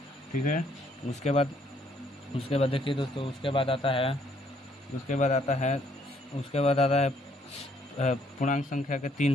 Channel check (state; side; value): normal; both; correlation 0.67